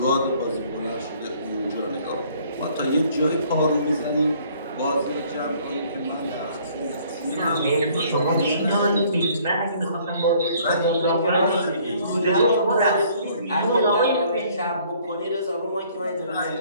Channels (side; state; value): both; inverted; correlation -0.59